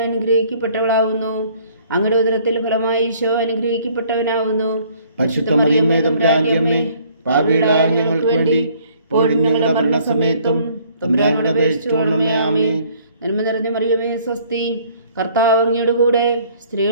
അനുഗ്രഹിക്കപ്പെട്ടവളാകുന്നു. അങ്ങയുടെ ഉദരത്തിൽ ഫലമായി ഈശോ അനുഗ്രഹിക്കപ്പെട്ടവനാകുന്നു. പരിശുദ്ധ മറിയമേ തമ്പുരാന്റെ അമ്മേ, പാപികളായ ഞങ്ങൾക്ക് വേണ്ടി ഇപ്പോഴും ഞങ്ങളുടെ മരണസമയത്തും തമ്പുരാനോട് അപേക്ഷിച്ചുകൊള്ളണമേ. ആമേൻ. നന്മ നിറഞ്ഞ മറിയമേ സ്വസ്തി, കർത്താവ് അങ്ങയുടെ കൂടെ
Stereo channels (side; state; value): both; inverted; correlation -0.59